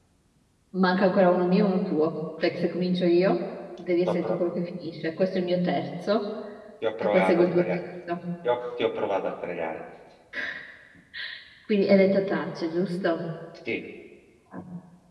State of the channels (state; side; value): identical; both; correlation 1.00